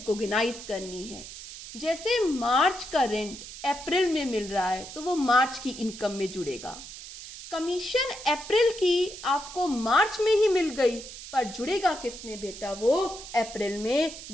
करनी है। जैसे मार्च का रेंट अप्रैल में मिल रहा है तो वो मार्च की इनकम में जुड़ेगा। कमीशन अप्रैल की आपको मार्च में ही मिल गई, पर जुड़ेगा किस में बेटा? वो अप्रैल में,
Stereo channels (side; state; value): right; noise; hiss, 13 dB below the sound